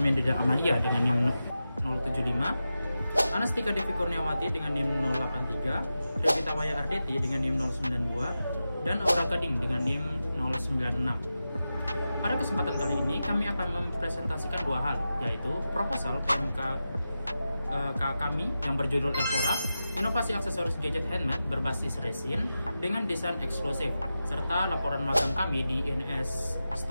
Mendida Amalia dengan NIM 075, Anastika Devi Kurniawati dengan NIM 083, Revita Waya Ardeti dengan NIM 092, dan Aura Gading dengan NIM 096. Pada kesempatan kali ini kami akan mempresentasikan dua hal, yaitu proposal PMK kami yang berjudul Elfora, inovasi aksesoris gadget handmade berbasis resin dengan desain eksklusif, serta laporan magang kami di INS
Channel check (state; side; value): inverted; both; correlation -0.92